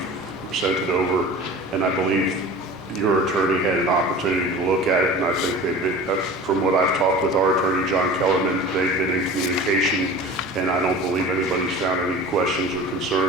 sent it over, and I believe your attorney had an opportunity to look at it, and I think they've been, from what I've talked with our attorney, John Kellerman, they've been in communication, and I don't believe anybody's found any questions or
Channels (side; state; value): both; normal; correlation 0.38